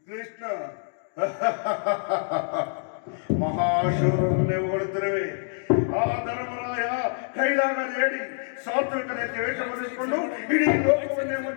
ಕೃಷ್ಣ ಮಹಾಶೂರರನ್ನೇ ಹೊರಡುತ್ತಿರುವೆ. ಆ ಧರ್ಮರಾಯ ಕೈಲಾಗದೇಡಿ ಸಾತ್ವಿಕತೆ ವೇಷ ಬರೆಸಿಕೊಂಡು ಇಡೀ ಲೋಕವನ್ನೇ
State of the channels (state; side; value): silent; right; digital silence